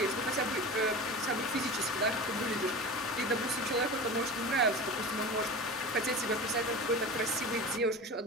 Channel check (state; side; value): normal; both; correlation 0.32